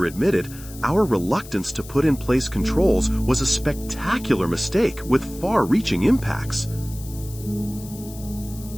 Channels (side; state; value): left; noise; hiss, 17 dB below the sound